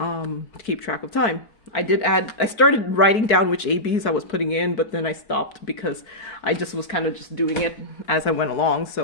keep track of time. I started writing down which ABs I was putting in, but then I stopped because I just was kind of just doing it as I went along.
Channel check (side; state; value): right; late; 4.6 ms